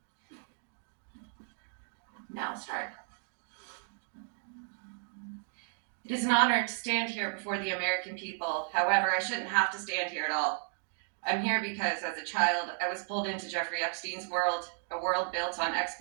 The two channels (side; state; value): left; silent; 55 dB below the other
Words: Now start. It is an honor to stand here before the American people. However, I shouldn't have to stand here at all. I'm here because as a child, I was pulled into Jeffrey Epstein's world, a world built on